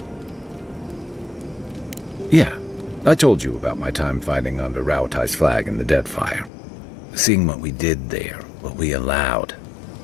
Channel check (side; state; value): right; drops out; at 6.5 s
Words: Yeah, I told you about my time fighting under Raotai's flag in the Deadfire. Seeing what we did there, what we allowed.